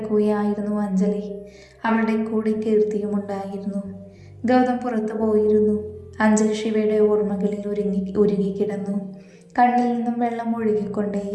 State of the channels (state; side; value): identical; both; correlation 1.00